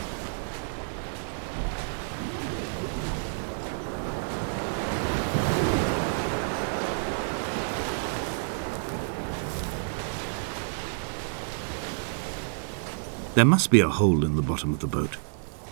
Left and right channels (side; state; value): left; silent; digital silence